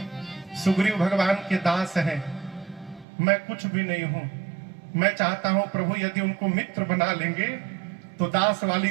सुग्रीव भगवान के दास हैं, मैं कुछ भी नहीं हूं। मैं चाहता हूं प्रभु यदि उनको मित्र बना लेंगे तो दास वाली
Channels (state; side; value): drops out; left; at 3.1 s